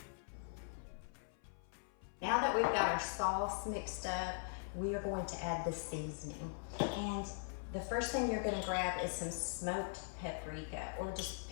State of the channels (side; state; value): right; silent; 50 dB below the other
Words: Now that we've got our sauce mixed up, we are going to add the seasoning. And the first thing you're gonna grab is some smoked paprika, or just